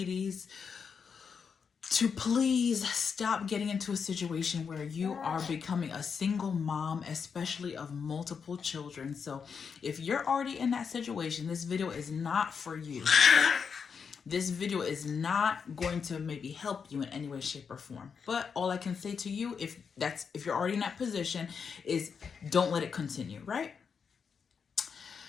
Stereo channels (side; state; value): right; quieter; 6.2 dB